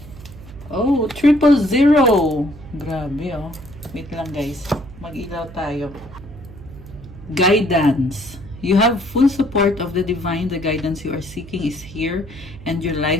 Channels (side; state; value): right; noise; hum, 17 dB below the sound